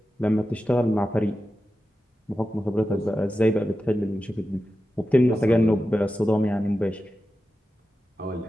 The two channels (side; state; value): both; normal; correlation 0.92